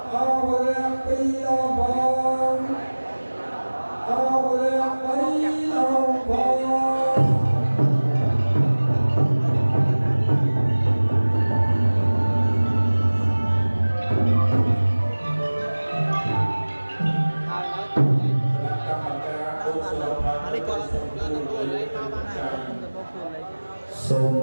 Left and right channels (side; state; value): both; inverted; correlation -1.00